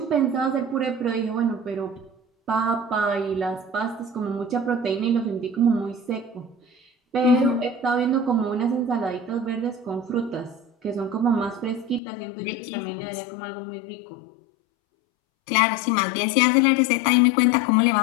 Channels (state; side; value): drops out; right; at 12.0 s